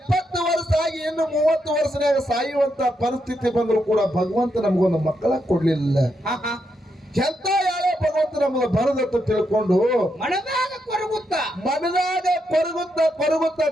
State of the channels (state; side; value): normal; both; correlation 0.81